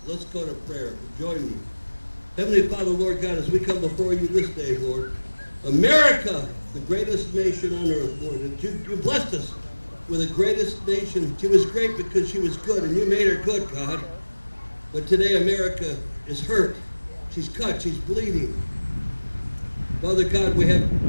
let's go to prayer. Join me. Heavenly Father, Lord God, as we come before you this day, Lord, America, the greatest nation on earth, Lord, and you blessed us with the greatest nation. She was great because she was good, and you made her good, God. But today America is hurt. She's cut. She's bleeding. Father God, we have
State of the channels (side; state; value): both; inverted; correlation -1.00